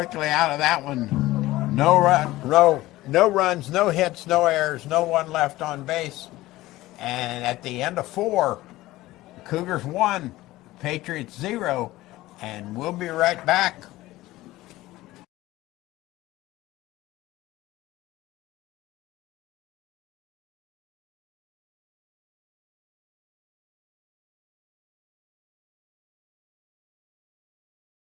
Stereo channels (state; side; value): quieter; right; 17.4 dB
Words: out of that one. No runs, no hits, no errors, no one left on base. And at the end of 4, the Cougars 1, Patriots 0, and we'll be right back.